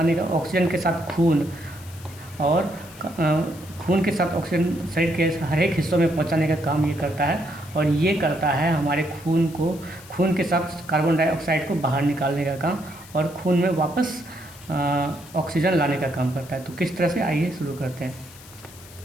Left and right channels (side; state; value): left; noise; hiss, 20 dB below the sound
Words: का, ऑक्सीजन के साथ खून और खून के साथ ऑक्सीजन शरीर के हर एक हिस्सों में पहुंचाने का काम ये करता है। और ये करता है हमारे खून के साथ कार्बन डाइऑक्साइड को बाहर निकालने का काम और खून में वापस ऑक्सीजन लाने का काम करता है। तो किस तरह से, आइए शुरू करते हैं।